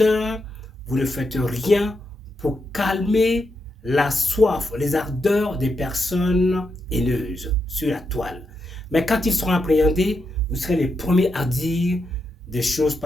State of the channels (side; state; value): both; normal; correlation 0.84